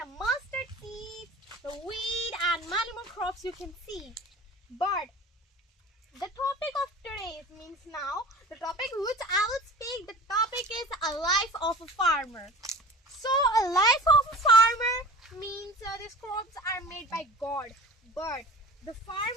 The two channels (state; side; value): normal; both; correlation 0.39